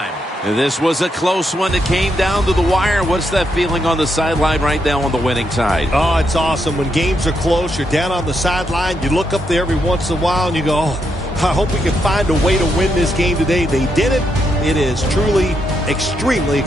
This was a close one. It came down to the wire. What's that feeling on the sideline right now on the winning side? Oh, it's awesome. When games are close, you're down on the sideline. You look up there every once in a while and you go, oh, I hope we can find a way to win this game today. They did it. It is truly extremely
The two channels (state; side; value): normal; both; correlation 0.80